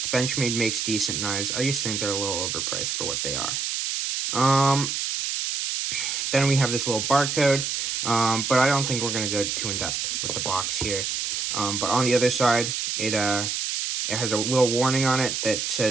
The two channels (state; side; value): noise; right; hiss, 1 dB below the sound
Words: Benchmade makes decent knives. I just think they're a little overpriced for what they are. Then we have this little barcode, but I don't think we're going to go too in-depth with the box here. But on the other side, it has a little warning on it that